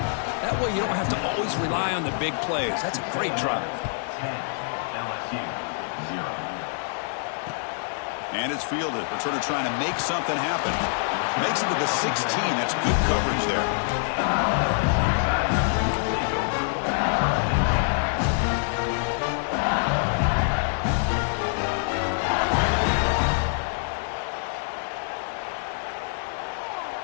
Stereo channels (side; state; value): right; silent; digital silence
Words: That way you don't have to always rely on the big plays. That's a great drive. 10, LSU, 0. And it's fielded. Returner trying to make something happen. Makes it to the 16. That's good coverage there.